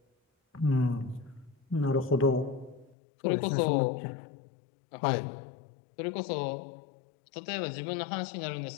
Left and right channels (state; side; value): drops out; right; at 3.0 s